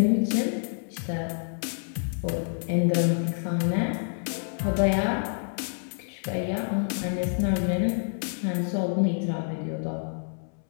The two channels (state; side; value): silent; right; 60 dB below the other